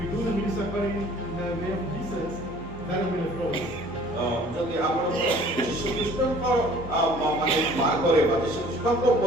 do the ministry according in the way of Jesus, that will be leftovers. ଯଦି ଆପଣ ଯୀଶୁ ଖ୍ରୀଷ୍ଟଙ୍କ ମାନେ ମାର୍ଗରେ ବା ଯୀଶୁ ଖ୍ରୀଷ୍ଟଙ୍କ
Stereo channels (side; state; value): both; normal; correlation 0.52